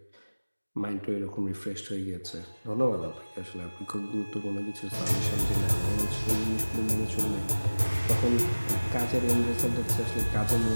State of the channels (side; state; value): both; inverted; correlation -1.00